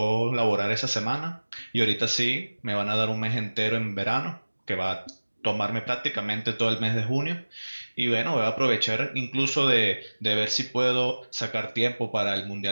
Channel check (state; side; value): inverted; both; correlation -1.00